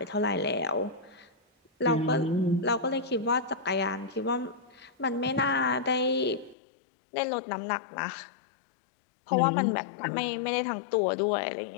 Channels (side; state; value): right; drops out; at 6.6 s